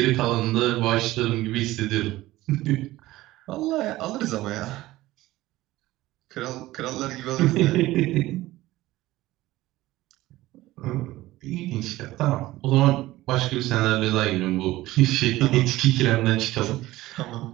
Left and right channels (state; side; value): quieter; left; 17.1 dB